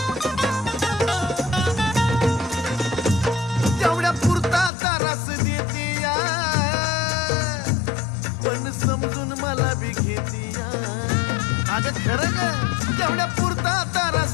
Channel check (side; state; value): right; drops out; at 4.7 s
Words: तेवढ्या पुरता तारास देती या, पण समजून मला बी घेती या. अगं खरं ग, तेवढ्या